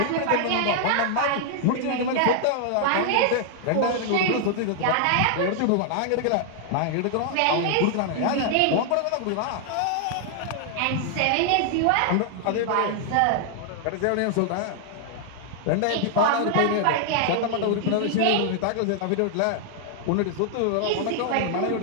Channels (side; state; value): both; different; correlation 0.00